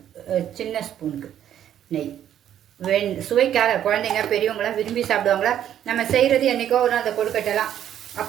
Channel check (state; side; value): quieter; left; 10.5 dB